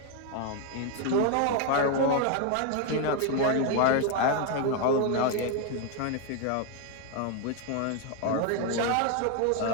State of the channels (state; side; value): different; both; correlation 0.01